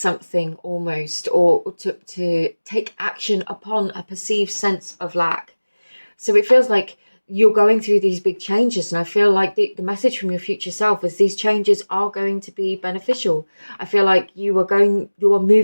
almost, or to take action upon a perceived sense of lack. So it feels like you're going through these big changes, and I feel like the message from your future self is these changes are going to be beneficial. I feel like you are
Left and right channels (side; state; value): both; inverted; correlation -1.00